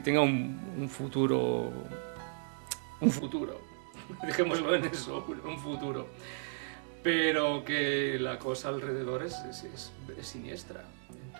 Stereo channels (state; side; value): silent; left; digital silence